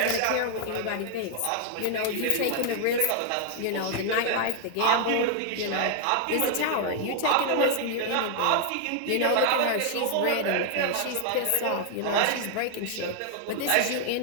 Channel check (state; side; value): different; both; correlation 0.00